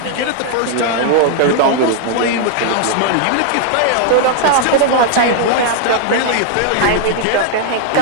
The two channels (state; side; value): different; both; correlation 0.00